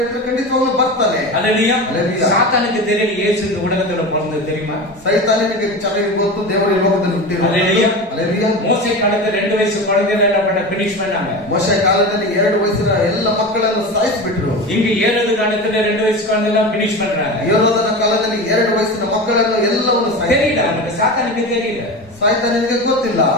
ಖಂಡಿತವಾಗ್ಲೂ ಬರ್ತಾನೆ. ஹalleluya. ஹalleluya. சாத்தானுக்கு தெரியல இயேசு இந்த உலகத்துல பிறந்தது தெரியுமா? ಸೈತಾನನಿಗೆ ಚೆನ್ನಾಗಿ ಗೊತ್ತು ದೇವರು ಈ ಲೋಕದಲ್ಲಿ ಹುಟ್ಟಿರೋದು. ஹalleluya. ಹalleluya. மோசே ಕಾಲದ 2 ವಯಸ್ಸು குழந்தைகளை என்ன பண்ண ಫಿನಿಶ್ பண்ணாங்க. ಮೋಶೆ ಕಾಲದಲ್ಲಿ 2 ವಯಸ್ಸಿನ ಎಲ್ಲ ಮಕ್ಕಳನ್ನು ಸಾಯಿಸಿಬಿಟ್ರು. இங்க 7 காலத்துல 2 ವಯಸ್ಸು குழந்தைலாம் ಫಿನಿಶ್ பண்றாங்க. ಯೋಧನ ಕಾಲದಲ್ಲಿ 2 ವಯಸ್ಸಿನ ಮಕ್ಕಳನ್ನು ಎಲ್ಲವನ್ನು தெரியல அவனுக்கு, சாத்தானுக்கு தெரியல. ಸಾಯ್ತಾನನಿಗೆ ಗೊತ್ತಿಲ್ಲ.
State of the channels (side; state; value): both; normal; correlation 0.26